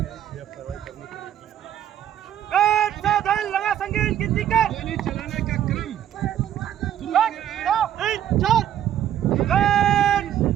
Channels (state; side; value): quieter; left; 10.9 dB